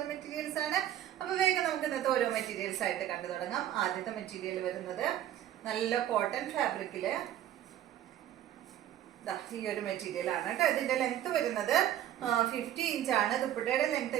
മെറ്റീരിയൽസ് ആണ്. അപ്പൊ വേഗം നമുക്ക് ഇന്നത്തെ ഓരോ മെറ്റീരിയൽസ് ആയിട്ട് കണ്ടു തുടങ്ങാം. ആദ്യത്തെ മെറ്റീരിയൽ വരുന്നത് നല്ല കോട്ടൺ ഫാബ്രിക്കില് ഈ ഒരു മെറ്റീരിയൽ ആണ് കേട്ടോ. ഇതിന്റെ ലെങ്ത് വരുന്നത് 50 ഇഞ്ചാണ്. ദുപ്പട്ടയുടെ ലെങ്ത്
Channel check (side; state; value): left; quieter; 11.7 dB